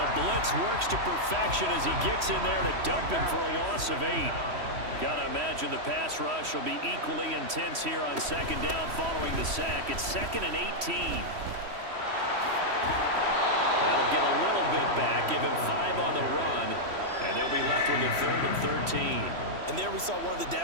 blitz works to perfection as he gets in there to dump him for a loss of 8. Got to imagine the pass rush will be equally intense here on 2nd down following the sack. It's 2nd and 18. That'll get a little bit back, give him 5 on the run, and they'll be left with a 3rd and 13. And there we saw one of the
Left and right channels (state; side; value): late; left; 3.1 ms